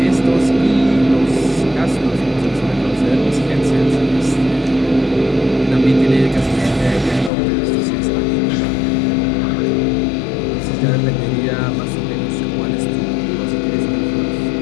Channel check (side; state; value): right; drops out; at 7.3 s